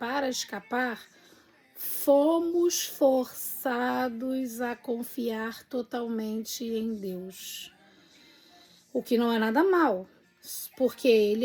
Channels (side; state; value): both; identical; correlation 1.00